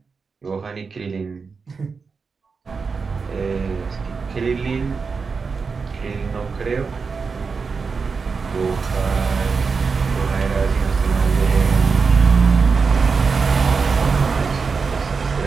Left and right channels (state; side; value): quieter; left; 5.0 dB